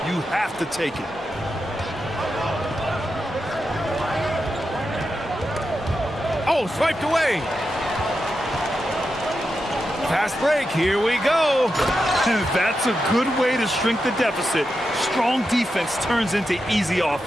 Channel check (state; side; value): normal; both; correlation 0.88